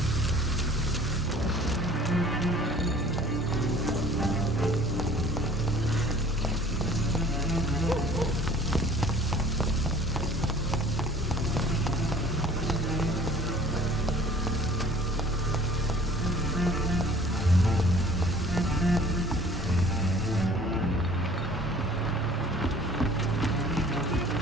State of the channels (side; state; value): both; normal; correlation 0.51